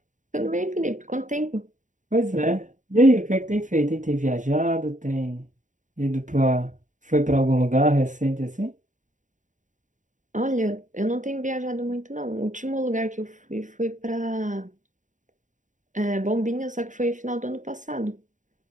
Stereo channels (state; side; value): late; left; 0.36 ms